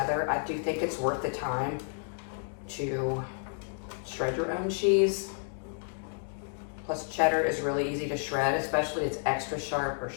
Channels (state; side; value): silent; right; digital silence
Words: I do think it's worth the time to shred your own cheese. Plus cheddar is really easy to shred, especially it's extra sharp or